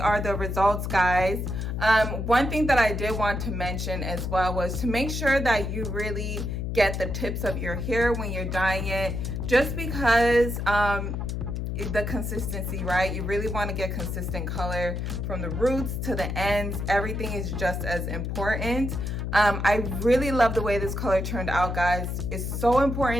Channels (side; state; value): left; noise; hum, 3 dB below the sound